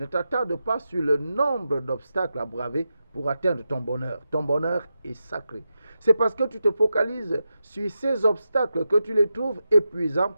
t'attarde pas sur le nombre d'obstacles à braver pour atteindre ton bonheur. Ton bonheur est sacré. C'est parce que tu te focalises sur ces obstacles que tu les trouves épuisants,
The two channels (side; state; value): both; inverted; correlation -0.89